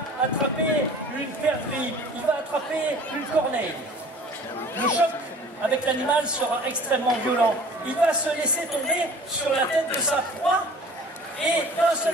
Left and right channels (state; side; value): normal; both; correlation 0.47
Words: attraper une perdrix, il va attraper une corneille. Le choc avec l'animal sera extrêmement violent. Il va se laisser tomber sur la tête de sa proie et d'un